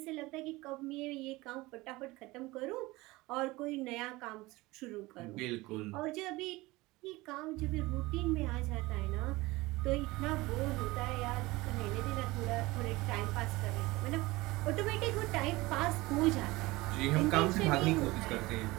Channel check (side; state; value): left; quieter; 20.9 dB